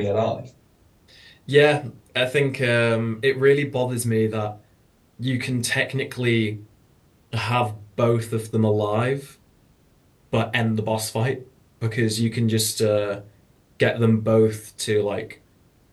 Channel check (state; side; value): identical; both; correlation 1.00